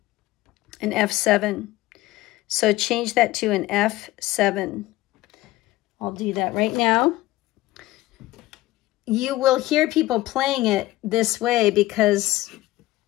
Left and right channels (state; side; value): quieter; right; 17.5 dB